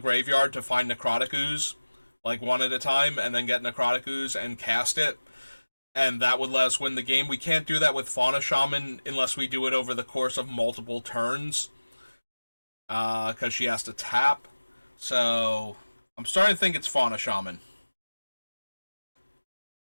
to find Necrotic Ooze, like one at a time, and then get Necrotic Ooze and cast it, and that would let us win the game. We can't do that with Fauna Shaman unless we do it over the course of multiple turns, because she has to tap. So, I'm starting to think it's Fauna Shaman.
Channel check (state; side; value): inverted; both; correlation -1.00